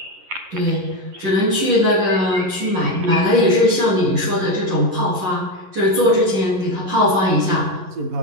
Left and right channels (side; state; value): left; late; 11 ms